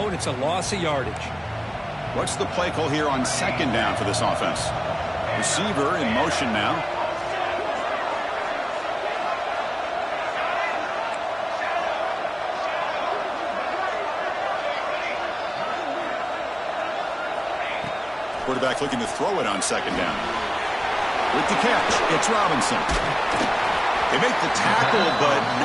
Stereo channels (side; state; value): both; identical; correlation 1.00